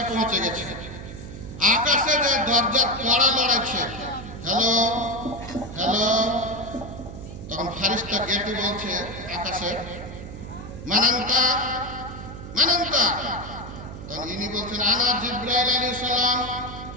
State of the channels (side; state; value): right; noise; hum, 11 dB below the sound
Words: পৌঁছে গেছে। আকাশে যায় দরজার কড়া লড়াচ্ছে, হ্যালো হ্যালো। তখন ফেরেশতা গেটে বলছে আকাশে, মানান্তা মানান্তা। তখন ইনি বলছেন, আনা জিবরাইল আলাইহিস সালাম,